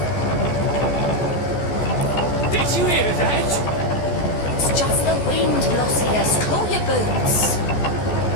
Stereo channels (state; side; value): late; right; 14 ms